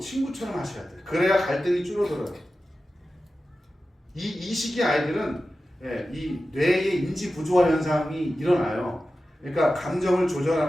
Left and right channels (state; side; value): normal; both; correlation 0.93